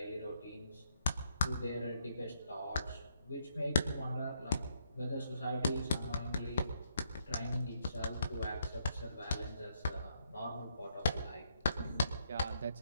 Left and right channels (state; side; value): inverted; both; correlation -0.73